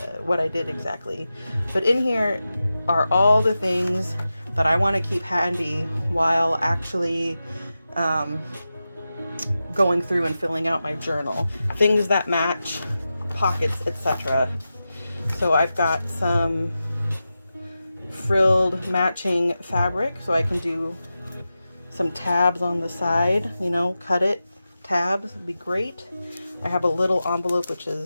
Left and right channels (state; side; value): inverted; both; correlation -0.92